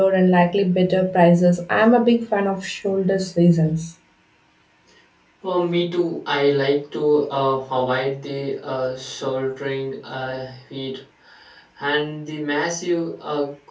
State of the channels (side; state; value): both; identical; correlation 1.00